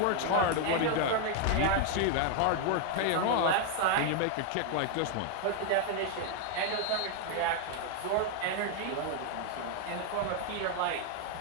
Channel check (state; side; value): different; both; correlation 0.00